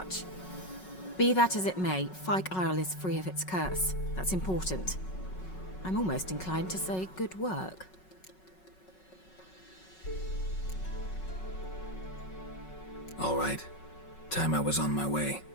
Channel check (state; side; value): late; right; 5.4 ms